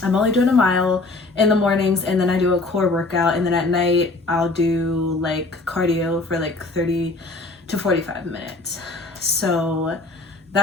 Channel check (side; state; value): right; quieter; 3.3 dB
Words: only doing a mile in the mornings, and then I do a core workout, and then at night I'll do like cardio for like 30 to 45 minutes. So